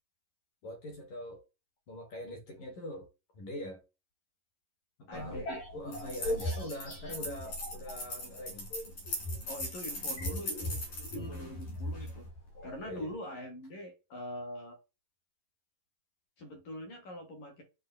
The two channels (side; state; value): right; late; 11 ms